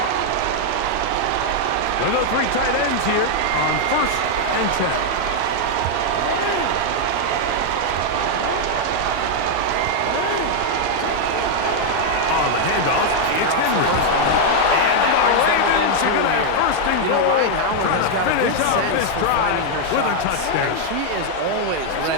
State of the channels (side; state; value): both; different; correlation 0.00